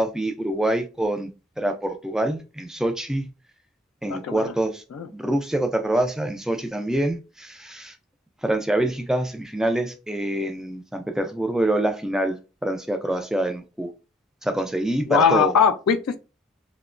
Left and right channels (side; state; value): both; normal; correlation 0.64